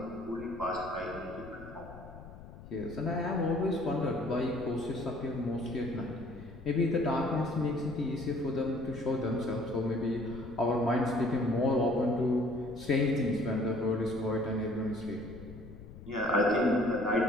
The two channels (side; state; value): left; noise; rumble, 16 dB below the sound